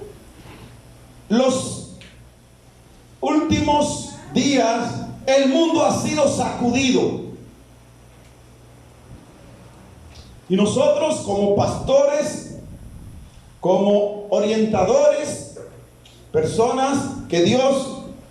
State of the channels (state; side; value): identical; both; correlation 1.00